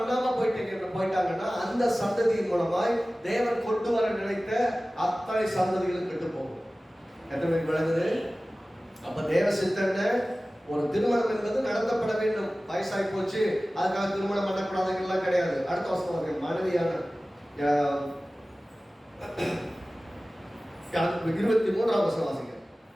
போயிட்டாங்கன்னா அந்த சந்ததியின் மூலமாய் தேவன் கொண்டு வர நினைத்த அத்தனை சந்ததிகளும் கெட்டு போகும். எத்தனை விளங்குது? அப்ப தேவ சித்தன ஒரு திருமணம் என்பது நடத்தப்பட வேண்டும். வயசாகி போச்சு அதுக்காக திருமணம் பண்ணக்கூடாதுலாம் கிடையாது. அடுத்த வருஷம் மனைவியான 23ஆம் வசனம் வாசிங்க.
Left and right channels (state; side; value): normal; both; correlation 0.97